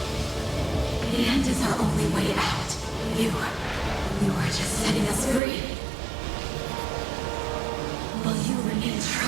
The end is our only way out. You are just setting us free. While you remain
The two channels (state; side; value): drops out; left; at 5.4 s